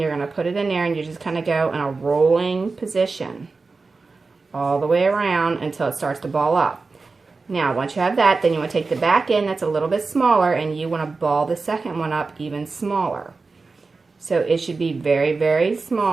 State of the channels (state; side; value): quieter; left; 4.1 dB